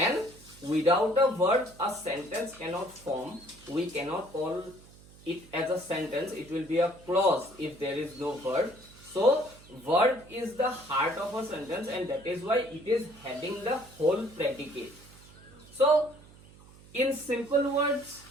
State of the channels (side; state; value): right; noise; hum, 23 dB below the sound